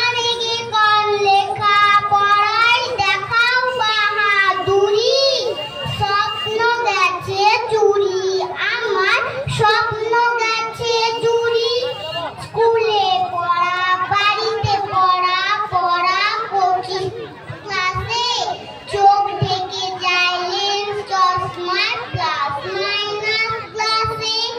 রেগে গান লেখা পড়াই দেখাও বাহাদুরি। স্বপ্ন গেছে চুরি আমার, স্বপ্ন গেছে চুরি। স্কুলে পড়া বাড়িতে পড়া, পড়া কোচিং ক্লাসে চোখ ঢেকে যায় লেন্স চশমার প্লাস মাইনাস ক্লাসে।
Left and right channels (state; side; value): identical; both; correlation 1.00